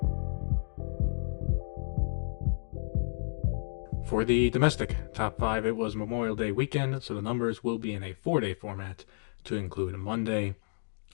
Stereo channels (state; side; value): silent; right; digital silence